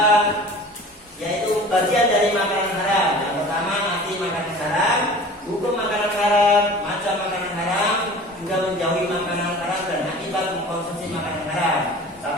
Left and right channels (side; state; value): both; normal; correlation 0.41